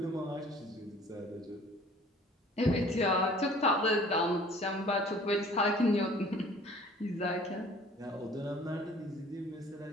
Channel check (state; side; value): normal; both; correlation 0.51